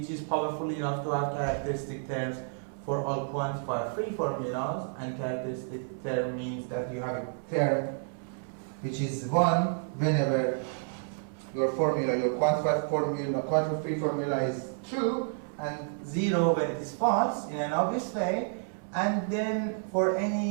is powerful enough to have characteristic terms for all quantifier free formulas, and characteristic term means that you have a term which is 1 whenever your formula, your quantified formula, quantifier free formula is true, and 0 when it is false in an obvious way. And then for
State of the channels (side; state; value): left; silent; 56 dB below the other